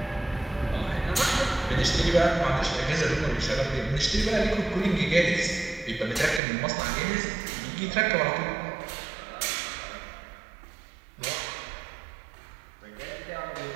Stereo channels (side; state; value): left; drops out; at 6.4 s